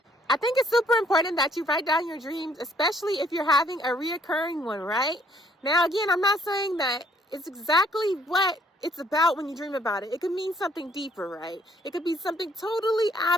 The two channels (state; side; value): normal; both; correlation 0.64